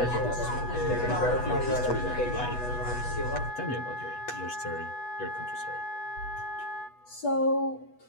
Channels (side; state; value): right; late; 8.2 ms